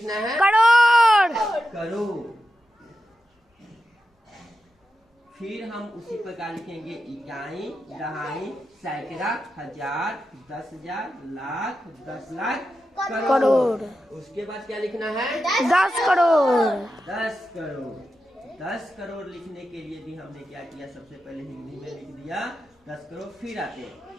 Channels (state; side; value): normal; both; correlation 0.90